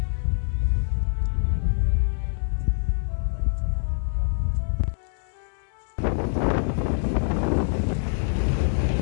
バイバイカモメちゃん。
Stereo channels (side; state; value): right; silent; digital silence